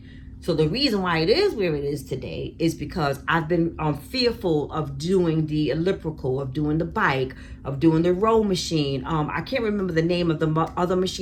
So the reason why it is where it is today is because I've been fearful of doing the elliptical, of doing the bike, of doing the row machine. I can't remember the name of the other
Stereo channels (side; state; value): both; identical; correlation 1.00